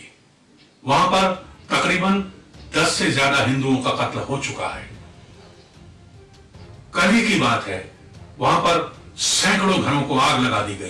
वहां पर तकरीबन 10 से ज्यादा हिंदुओं का कत्ल हो चुका है। कल ही की बात है, वहां पर सैकड़ों घरों को आग लगा दी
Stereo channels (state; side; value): identical; both; correlation 1.00